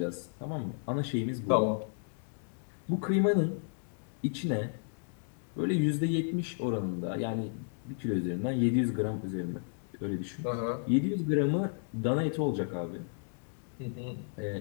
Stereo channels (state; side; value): silent; right; digital silence